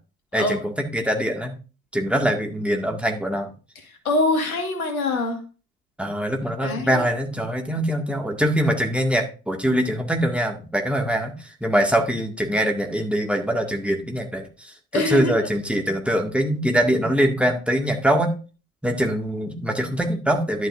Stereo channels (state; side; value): normal; both; correlation 0.69